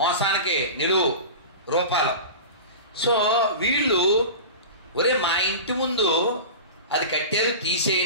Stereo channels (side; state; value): both; inverted; correlation -0.31